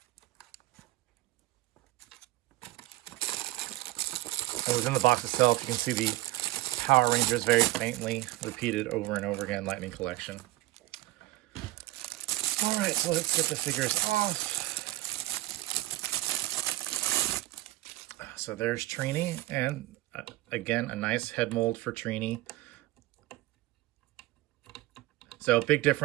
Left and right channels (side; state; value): left; quieter; 18.3 dB